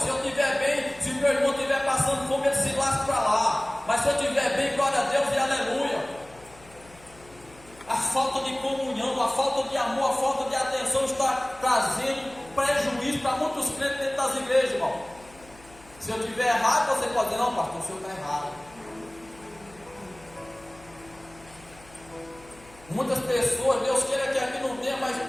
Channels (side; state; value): left; noise; hum, 24 dB below the sound